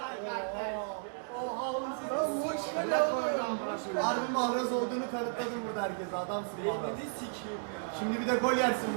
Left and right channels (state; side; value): silent; left; digital silence